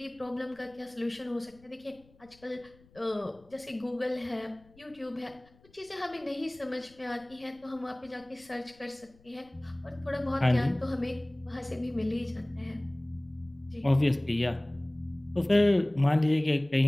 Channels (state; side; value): noise; left; rumble, 28 dB below the sound